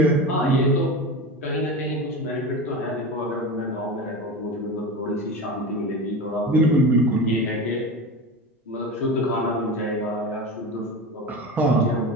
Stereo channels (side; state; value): both; normal; correlation 0.26